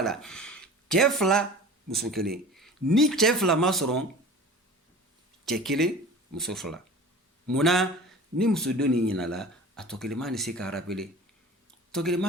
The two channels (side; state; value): both; normal; correlation 0.39